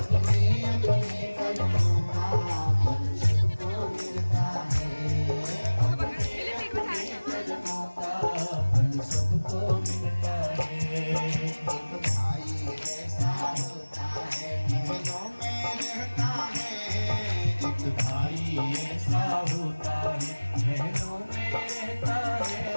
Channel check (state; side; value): inverted; both; correlation -1.00